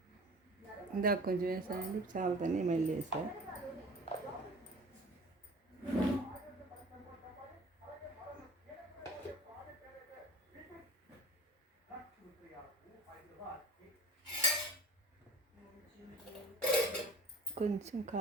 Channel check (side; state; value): both; normal; correlation 0.42